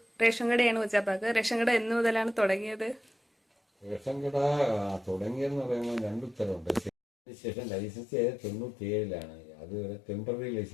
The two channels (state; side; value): drops out; right; at 6.9 s